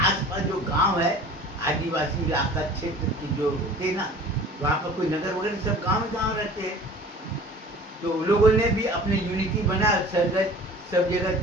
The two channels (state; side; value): normal; both; correlation 0.44